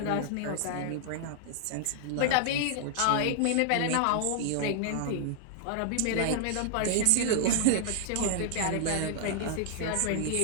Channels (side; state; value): both; different; correlation -0.01